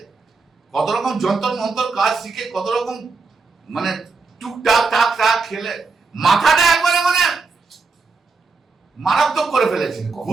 কত রকম যন্তর মন্তর কাজ শিখে কত রকম মানে টুকটাক টাক টাক খেলে মাথাটা একবারে মানে মারাত্মক করে ফেলেছে।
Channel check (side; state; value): left; quieter; 4.3 dB